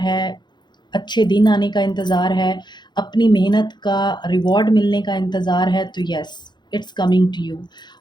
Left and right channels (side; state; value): right; late; 0.21 ms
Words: अच्छे दिन आने का इंतज़ार है, अपनी मेहनत का रिवॉर्ड मिलने का इंतज़ार है, तो yes, it's coming to you.